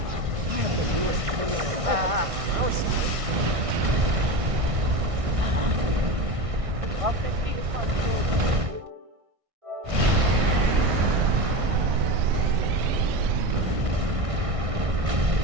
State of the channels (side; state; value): left; late; 1.6 ms